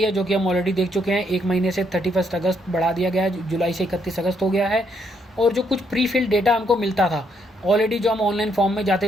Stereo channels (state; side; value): normal; both; correlation 0.73